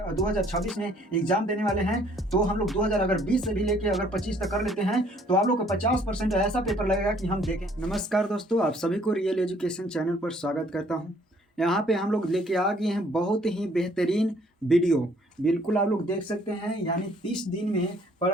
2026 में एग्जाम देने वाले हैं तो हम लोग 2020 से भी लेके अगर 25 तक कर लेते हैं तो आप लोग को 50% ऐसा पेपर लगेगा कि हम देखें। नमस्कार दोस्तों, आप सभी को रियल एजुकेशन चैनल पर स्वागत करता हूँ। यहाँ पे हम लोग लेके आ गए हैं बहुत ही बेहतरीन वीडियो, बिल्कुल आप लोग देख सकते हैं। यानी 30 दिन में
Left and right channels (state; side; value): normal; both; correlation 0.61